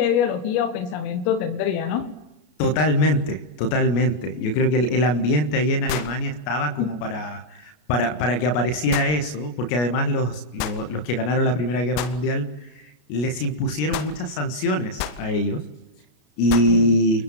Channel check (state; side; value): late; right; 33 ms